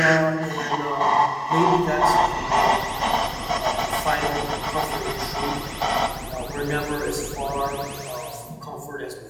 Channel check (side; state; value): both; identical; correlation 1.00